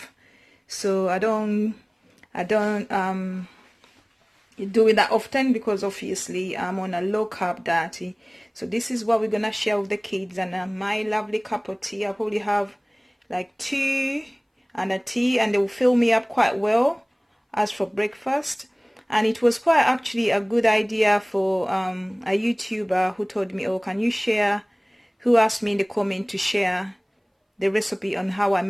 so I don't do it that often because obviously I'm on a low carb diet. So this is what we're gonna share with the kids, and my lovely cup of tea. I probably have like 2 and a tea, and they will fill me up quite well as for breakfast. And it was quite actually a good idea for a YouTuber who told me, oh, can you share, who asked me in the comment to share the recipe on how I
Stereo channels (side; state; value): both; identical; correlation 1.00